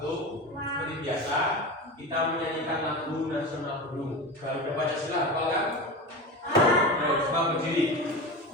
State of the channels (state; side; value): normal; both; correlation 0.26